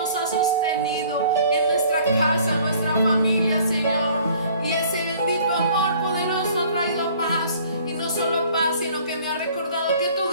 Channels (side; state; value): both; inverted; correlation -0.54